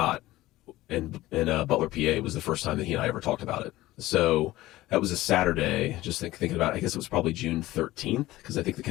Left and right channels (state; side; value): quieter; right; 17.0 dB